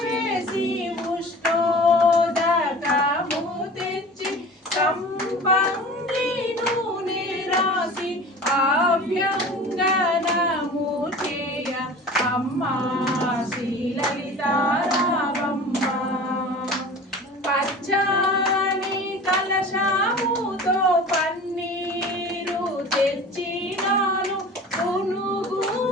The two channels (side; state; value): both; normal; correlation 0.39